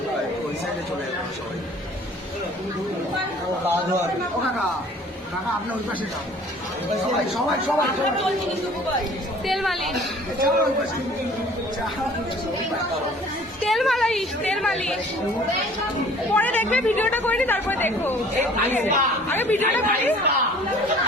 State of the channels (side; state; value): both; normal; correlation 0.51